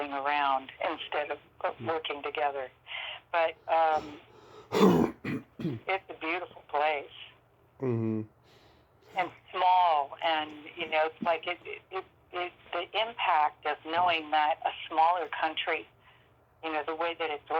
around instead of working together. But it's a beautiful place. Mm-hmm. And small, and it's like the impact of knowing that a smaller country, the way that it's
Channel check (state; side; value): identical; both; correlation 1.00